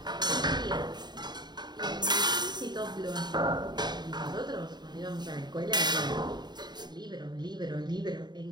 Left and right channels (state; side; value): late; left; 0.21 ms